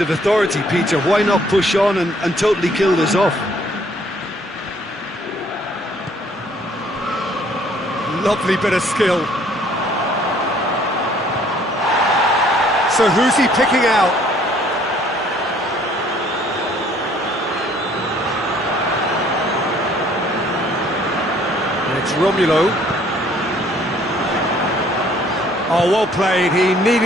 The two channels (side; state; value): both; normal; correlation 0.60